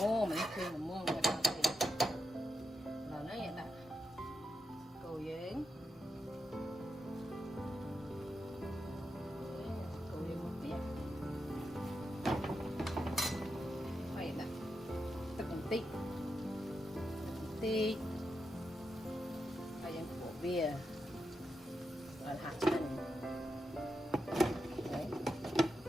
មនេះគឺល្មមមកដល់នេះដល់នេះដាក់គោយើងមកទៀតហើយដាក់ទឹកបន្តិចហើយយើងបុកវាឲ្យហាក់ឆ្ងាញ់ហើយ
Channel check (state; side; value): normal; both; correlation 0.86